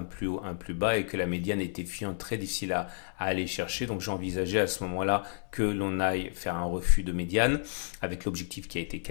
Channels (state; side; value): silent; right; 57 dB below the other